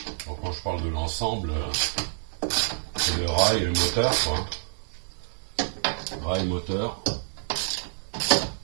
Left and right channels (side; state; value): left; silent; 60 dB below the other